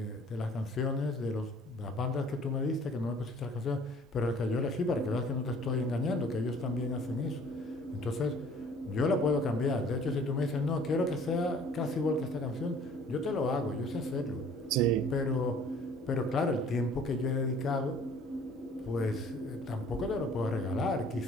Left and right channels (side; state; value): both; normal; correlation 0.53